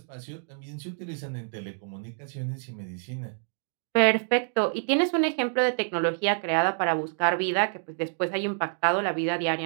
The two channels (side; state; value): left; silent; 60 dB below the other